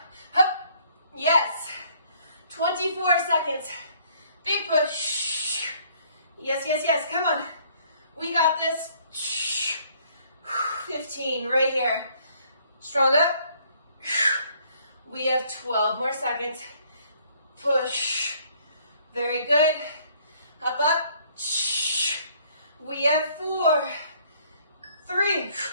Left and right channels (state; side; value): inverted; both; correlation -0.62